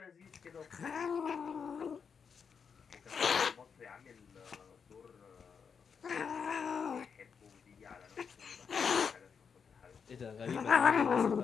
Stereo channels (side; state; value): right; quieter; 6.3 dB